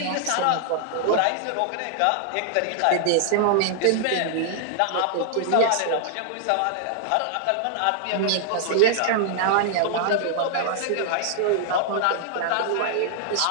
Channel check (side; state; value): both; different; correlation -0.01